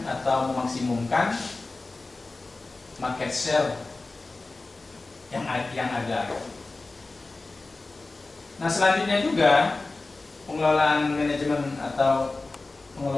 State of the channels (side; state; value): right; quieter; 3.4 dB